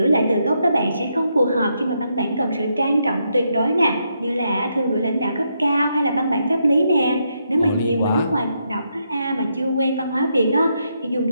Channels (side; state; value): both; inverted; correlation -0.80